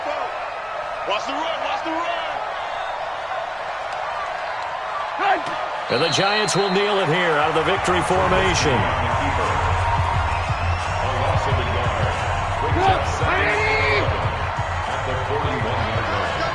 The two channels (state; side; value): identical; both; correlation 1.00